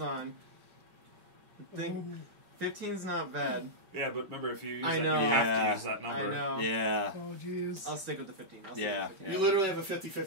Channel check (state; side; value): late; left; 5.3 ms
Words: on. I think 15's not bad. Yeah, but remember, if you use I that, know. you have Yeah. to use that number. I know. Yeah. Oh, jeez. I'll stick with the 15. Yeah. You literally have a